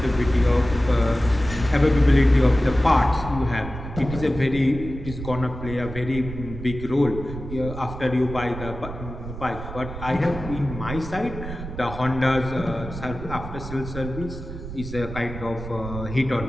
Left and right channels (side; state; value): right; noise; rumble, 10 dB below the sound